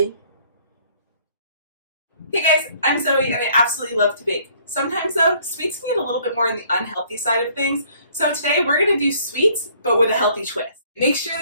Hey guys, I'm Zoe and I absolutely love to bake. Sometimes though, sweets can get a little bit more on the unhealthy side of things. So today we're going to do sweets, but with a healthy twist. Make sure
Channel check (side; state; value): both; inverted; correlation -0.60